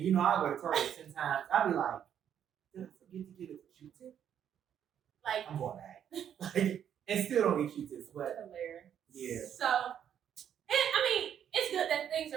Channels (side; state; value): left; quieter; 9.2 dB